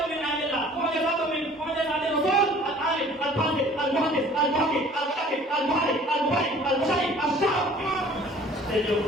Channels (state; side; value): normal; both; correlation 0.51